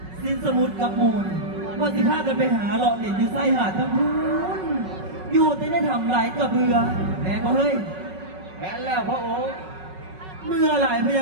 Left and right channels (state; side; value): late; left; 5.4 ms